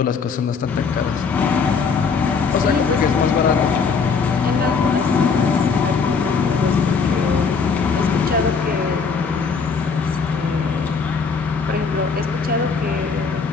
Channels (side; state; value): right; quieter; 5.3 dB